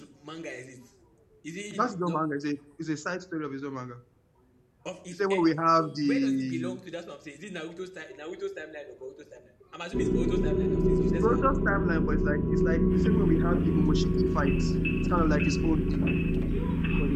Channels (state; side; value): identical; both; correlation 1.00